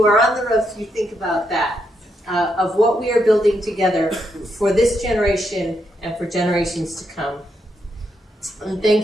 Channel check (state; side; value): normal; both; correlation 0.80